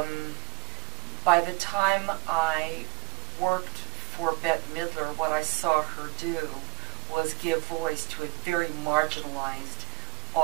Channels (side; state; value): left; quieter; 22.9 dB